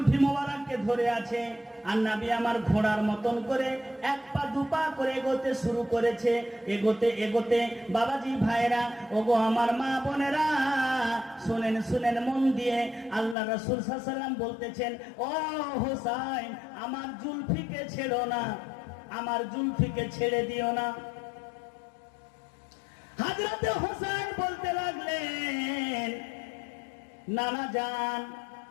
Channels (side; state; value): right; drops out; at 13.4 s